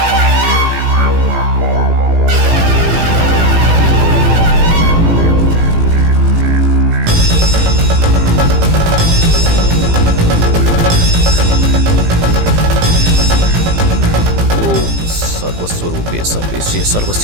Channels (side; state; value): left; late; 18 ms